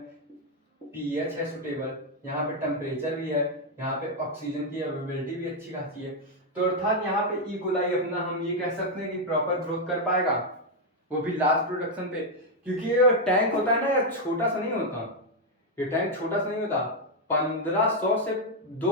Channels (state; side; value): normal; both; correlation 0.01